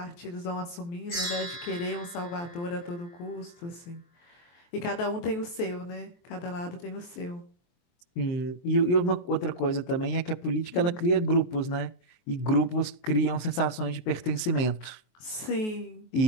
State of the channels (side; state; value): right; late; 23 ms